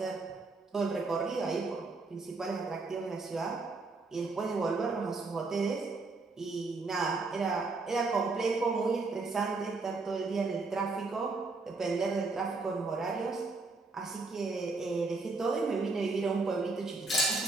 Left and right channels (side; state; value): left; quieter; 3.7 dB